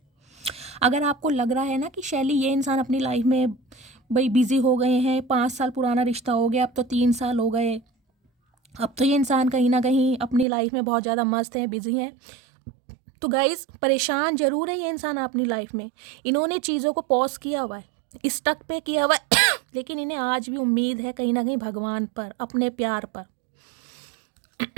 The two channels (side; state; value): left; drops out; at 10.5 s